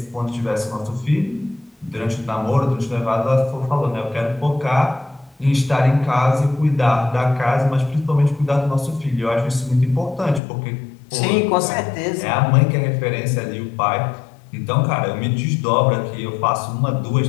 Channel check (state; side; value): drops out; right; at 10.4 s